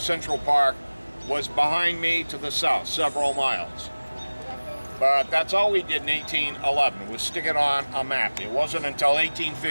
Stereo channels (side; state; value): both; inverted; correlation -1.00